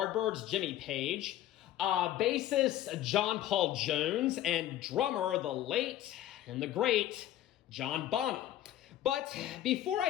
Jimmy Page, bassist John Paul Jones, and drummer the late and the great John Bonham. But before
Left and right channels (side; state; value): right; quieter; 12.9 dB